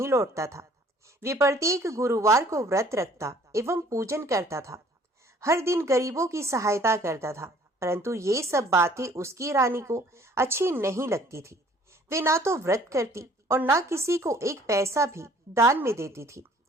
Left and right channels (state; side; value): normal; both; correlation 0.56